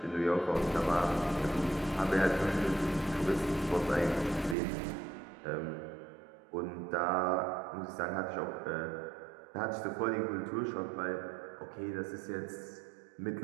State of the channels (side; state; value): left; drops out; at 4.5 s